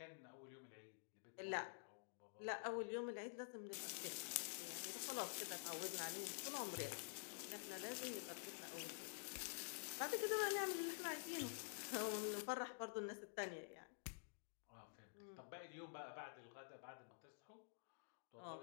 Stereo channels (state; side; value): silent; right; digital silence